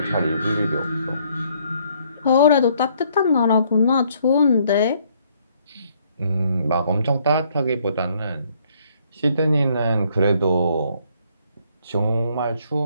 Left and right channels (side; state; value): both; inverted; correlation -0.67